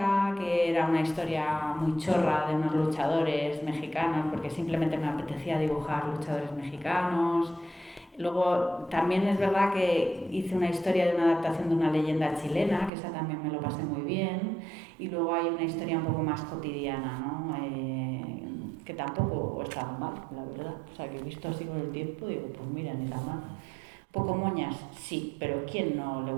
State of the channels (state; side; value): drops out; left; at 12.9 s